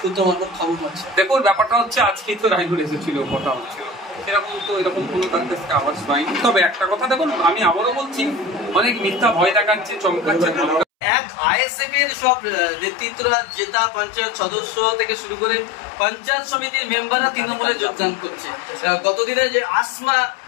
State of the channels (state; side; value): drops out; right; at 10.9 s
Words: মারফত খবর পাচ্ছে। দেখুন, ব্যাপারটা হচ্ছে, আজকেই তো রাইনুল এসেছিল, কথা হচ্ছিল, এরকম কোনো তার কাছে আওয়াজ পাইনি। তবে একটা কথা দেখুন, আমি আবারও বলছি, অনেক মিথ্যা ভয় দেখাচ্ছে, চমকাচ্ছে। এক আইএসএফ এর সব নেতৃত্বরা, জেতা পঞ্চায়েত সদস্য থেকে শুরু করে পঞ্চায়েত সমিতির মেম্বাররা তৃণমূলে যোগদান করছে। গতদিনে যে আসমা